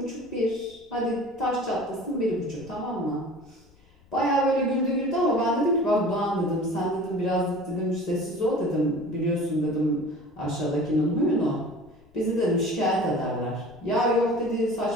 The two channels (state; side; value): noise; left; rumble, 29 dB below the sound